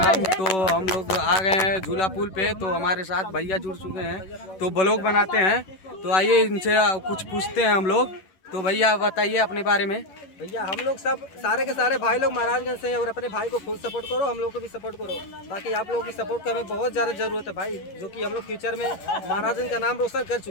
तो हम लोग आ गए हैं झूला पुल पे। तो हमारे साथ भैया जुड़ चुके हैं तो ब्लॉग बनाते हैं। तो आइए इनसे कुछ पूछते हैं हम लोग। तो भैया बताइए अपने बारे में। भैया हम लोग सब सारे के सारे भाई लोग महाराजगंज से हैं और अपने भाई को फुल सपोर्ट करो, हम लोग को भी सपोर्ट करो। बाकी आप लोगों की सपोर्ट की हमें बहुत ज़्यादा ज़रूरत है भाई, जो कि हम लोग फ्यूचर में महाराजगंज का नाम रोशन कर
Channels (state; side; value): late; right; 11 ms